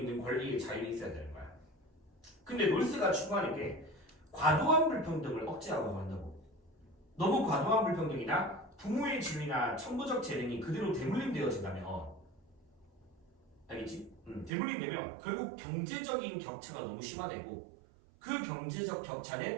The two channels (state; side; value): drops out; left; at 14.5 s